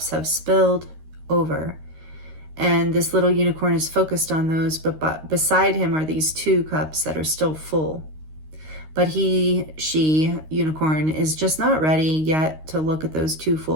have spilled over, and this little unicorn is focused on those, but beside him are these 2 cups that are still full. But she, unicorn, is just not ready yet to look at those 2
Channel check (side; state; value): left; late; 13 ms